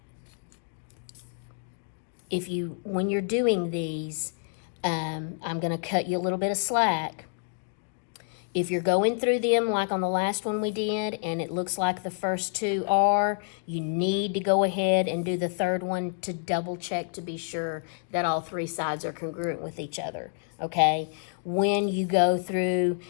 when you're doing these, I'm going to cut you a little bit of slack. If you're going through them like on the last one we did and it looks like the first two are, you need to go ahead and do the third one to double check to be sure that all three sides are congruent with each other, okay? When you go through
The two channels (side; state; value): right; silent; digital silence